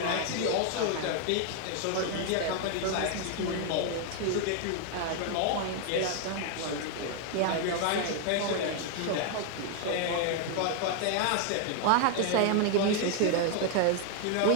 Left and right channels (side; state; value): both; different; correlation 0.00